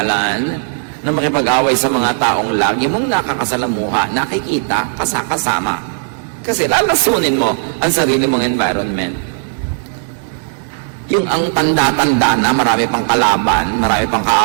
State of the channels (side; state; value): left; silent; digital silence